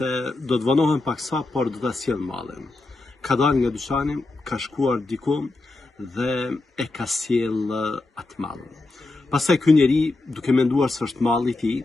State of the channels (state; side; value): quieter; right; 3.1 dB